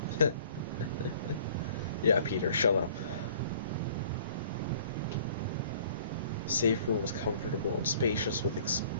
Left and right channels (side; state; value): both; inverted; correlation -0.53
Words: Yeah, Peter, shut up. The safe room was comfortable and spacious with